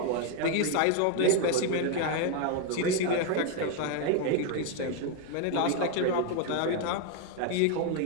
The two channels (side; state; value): both; different; correlation 0.01